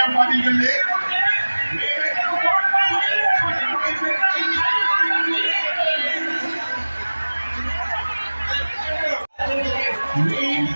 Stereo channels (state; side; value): inverted; both; correlation -1.00